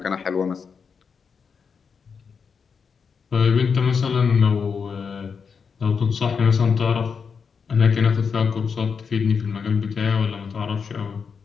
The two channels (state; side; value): quieter; right; 5.9 dB